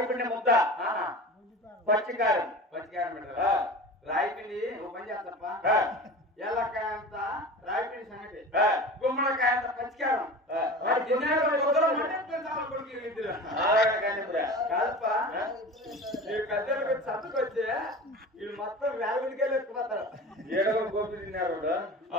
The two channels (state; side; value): normal; both; correlation 0.34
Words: పిండి ముద్ద పచ్చికారం పెట్టాలా రాయి పిండి ఓ పని చేస్తప్ప ఎల్లకాయ అంత రాయి పిండి సంగతి గుమ్మడికాయ అంత పచ్చికారం కాదప్ప మీరు కద్దెలకు చదువుకొచ్చి వీళ్ళు మొత్తం వేలవిడికెళ్ళి ఎత్తుకుపోతారు ఏడవ గోపి తిన్నారు